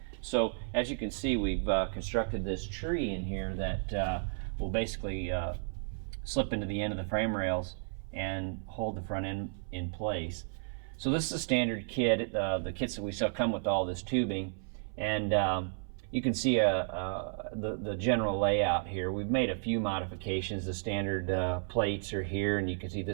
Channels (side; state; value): left; silent; 56 dB below the other